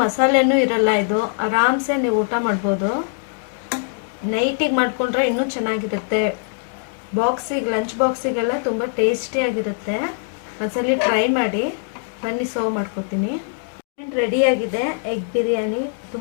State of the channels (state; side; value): silent; right; digital silence